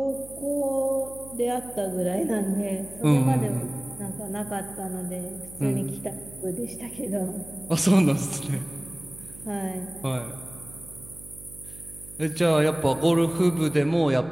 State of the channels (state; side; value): noise; right; hum, 18 dB below the sound